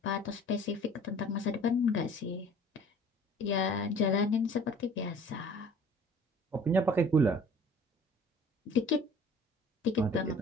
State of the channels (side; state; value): both; normal; correlation 0.49